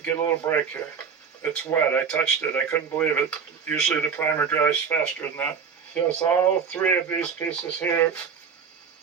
get a little break here. It's wet. I touched it. I couldn't believe it. Usually the primer dries faster than that. Yes, all 3 of these pieces here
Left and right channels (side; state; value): left; quieter; 6.4 dB